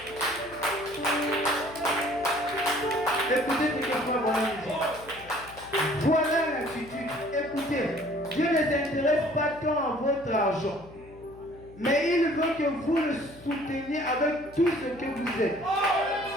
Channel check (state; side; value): noise; left; hum, 21 dB below the sound